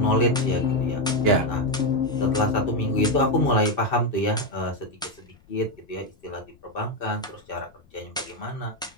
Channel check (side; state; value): left; noise; rumble, 29 dB below the sound